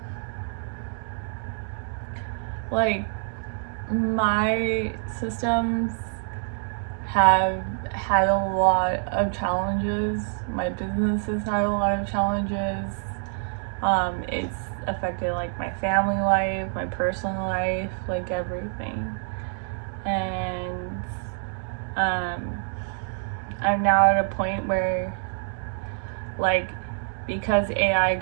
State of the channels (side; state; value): left; silent; digital silence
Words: like my systems have had a lot of challenges. My business has had a lot of challenges. It's affected like my family life, my personal life, like everything. And I'm now at a point where, like, because AI